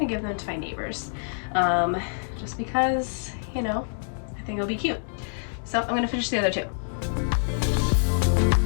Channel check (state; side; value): silent; right; digital silence